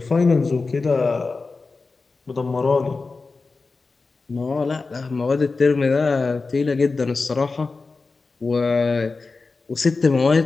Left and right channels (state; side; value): quieter; right; 4.0 dB